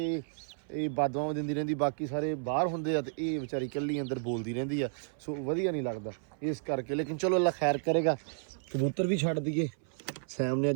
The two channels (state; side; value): silent; left; 56 dB below the other